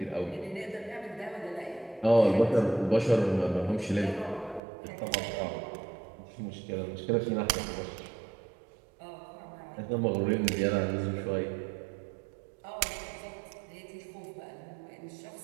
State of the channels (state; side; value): drops out; left; at 4.6 s